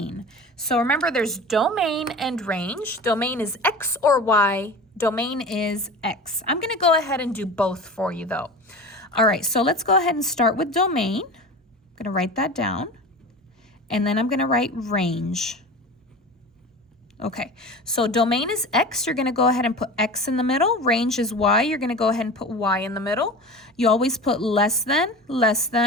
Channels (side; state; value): both; normal; correlation 0.33